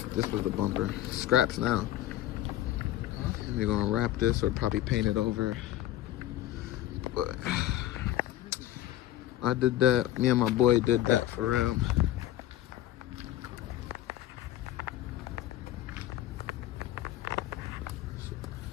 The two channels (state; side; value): quieter; right; 13.7 dB